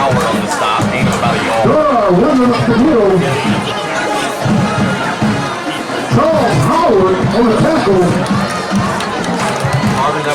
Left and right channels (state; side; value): identical; both; correlation 1.00